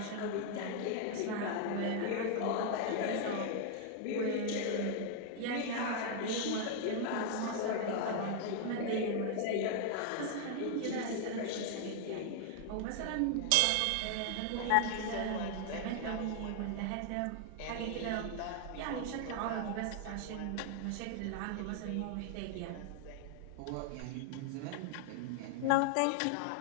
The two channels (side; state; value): both; different; correlation 0.00